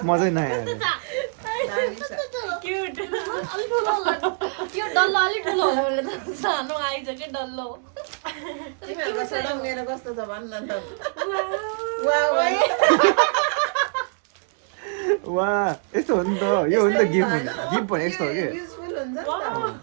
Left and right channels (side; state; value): left; silent; 62 dB below the other